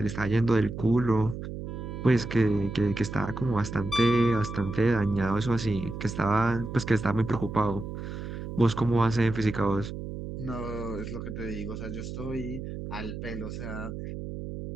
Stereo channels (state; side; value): noise; right; hum, 7 dB below the sound